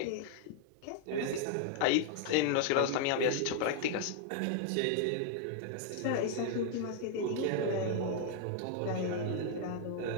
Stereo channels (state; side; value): different; both; correlation 0.00